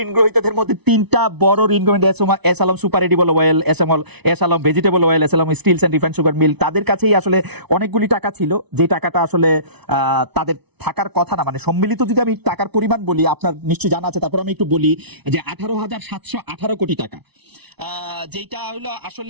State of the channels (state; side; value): late; left; 0.99 ms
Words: ঋণ গ্রহীতাদের মধ্যে 3টা বড় ঋণ গ্রহীতা S Alam super edible oil, S Alam vegetable oil, S Alam steels and refined sugar mill, তাদের কাছেই আসলে অনেকগুলি টাকা ছিল যে টাকাটা আসলে তাদের থাকার কথা না। মানে সম্মিলিত যদি আমি টাকার পরিমাণ বলি, আপনার নিশ্চয়ই জানা আছে, তারপর আমি একটু বলি যে 18,718 কোটি টাকা, যেটা হলো